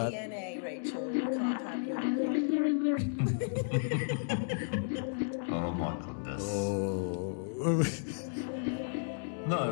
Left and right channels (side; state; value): right; silent; digital silence